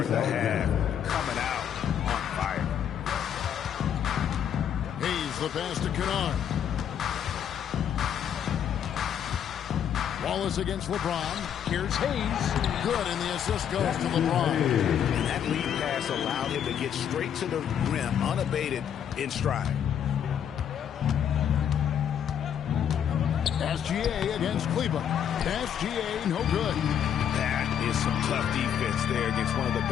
the half. Coming out on fire. Hayes the pass to Kennard. Wallace against LeBron. Here's Hayes. Good, and the assist goes to LeBron. And that lead pass allowed him to get straight to the rim, unabated in stride. SGA against Kleber. SGA, no good. That is some tough defense there against one of the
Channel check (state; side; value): quieter; right; 9.0 dB